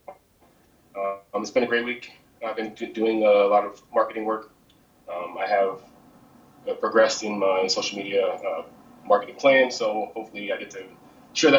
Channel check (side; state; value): both; identical; correlation 1.00